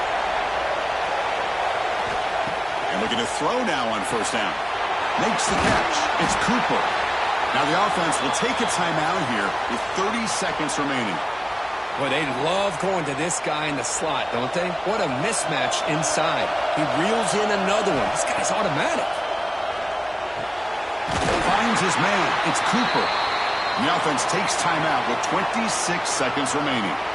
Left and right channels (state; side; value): identical; both; correlation 1.00